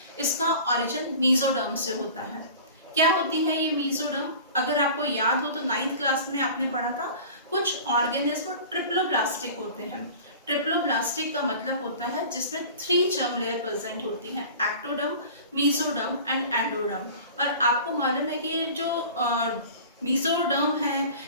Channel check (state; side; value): inverted; both; correlation -0.40